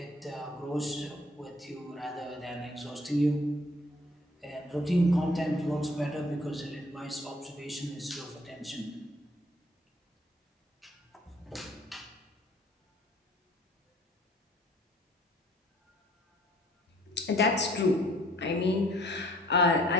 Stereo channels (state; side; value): normal; both; correlation 0.58